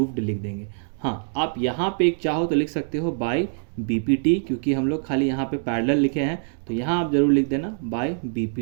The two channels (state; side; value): silent; left; digital silence